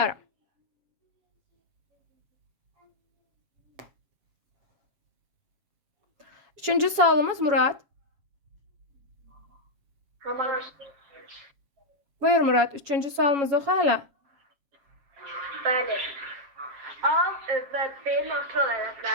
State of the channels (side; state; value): left; late; 7.5 ms